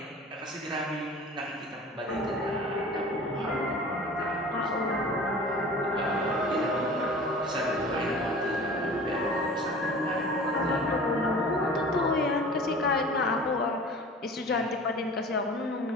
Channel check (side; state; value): both; normal; correlation 0.41